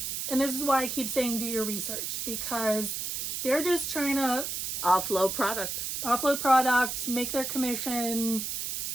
this is why I keep saying do your research, because they're just trying to offload product, make their commission,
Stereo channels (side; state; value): right; noise; hiss, 3 dB below the sound